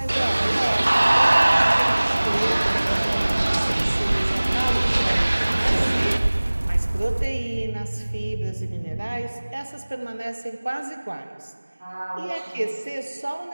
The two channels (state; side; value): inverted; both; correlation -1.00